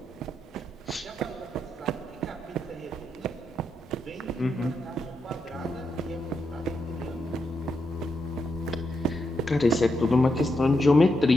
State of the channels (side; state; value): both; normal; correlation 0.83